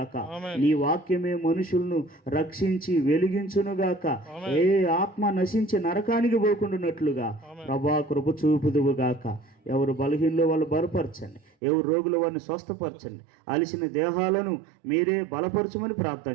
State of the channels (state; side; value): drops out; left; at 11.5 s